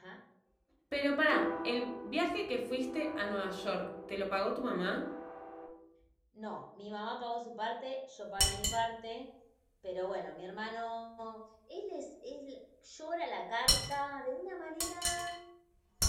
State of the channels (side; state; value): both; identical; correlation 1.00